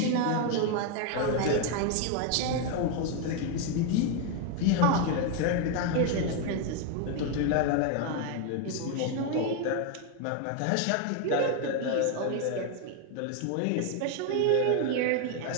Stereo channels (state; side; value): different; both; correlation 0.01